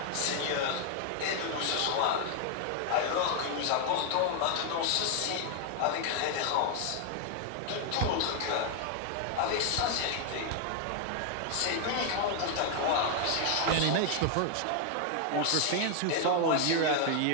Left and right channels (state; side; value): different; both; correlation 0.00